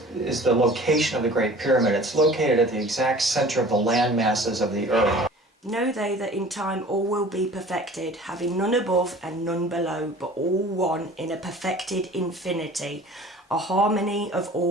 the location of the Great Pyramid. It's located at the exact center of the land masses of the Earth. Know they that in time all will be perfected, having none above and none below, but all one in a perfected infinity, a harmony of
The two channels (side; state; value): both; normal; correlation 0.45